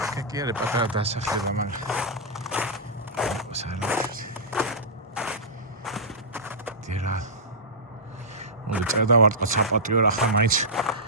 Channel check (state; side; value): normal; both; correlation -0.15